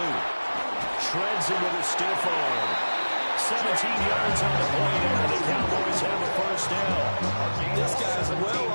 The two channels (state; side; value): inverted; both; correlation -1.00